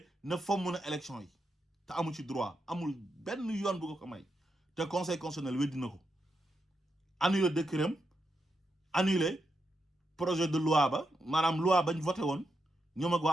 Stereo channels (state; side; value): normal; both; correlation 0.85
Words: ne fomm na élection yi te amu ci droit amul benn yoon bu ko may te conseil constitutionnel weddi na ko annulé décret am annulé projet de loi ba maanaam loi bañ voté woon ñoom ak